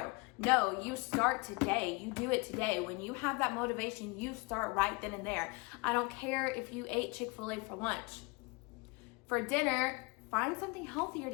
No, you start today. You do it today. When you have that motivation, you start right then and there. I don't care if you ate Chick-fil-A for lunch. For dinner, find something healthier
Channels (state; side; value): quieter; right; 28.1 dB